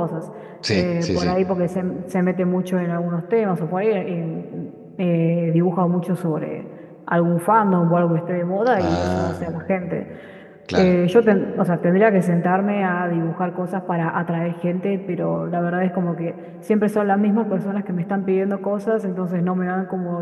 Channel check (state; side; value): identical; both; correlation 1.00